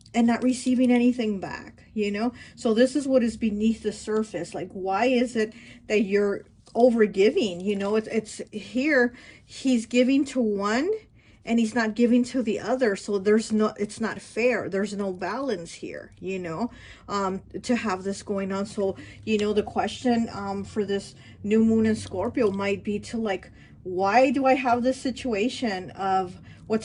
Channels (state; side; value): identical; both; correlation 1.00